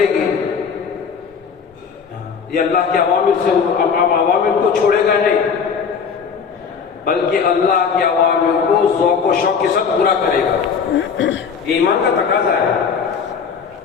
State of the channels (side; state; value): right; quieter; 6.3 dB